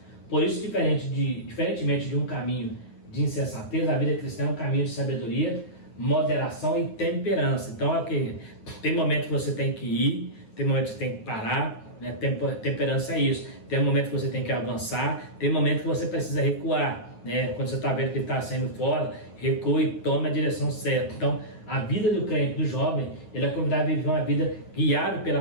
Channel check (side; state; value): right; late; 9.6 ms